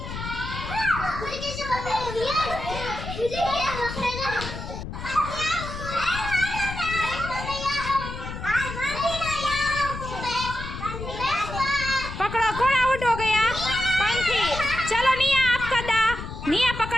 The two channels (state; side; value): noise; left; rumble, 8 dB below the sound